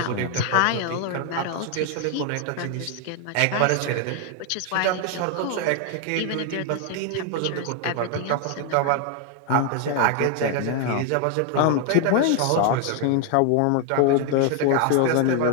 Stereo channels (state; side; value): different; both; correlation 0.00